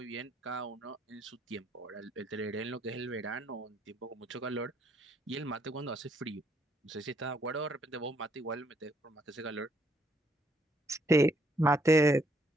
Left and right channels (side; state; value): both; normal; correlation 0.70